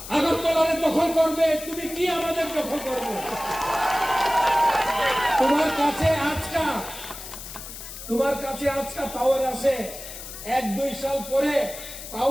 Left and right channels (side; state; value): left; noise; hiss, 12 dB below the sound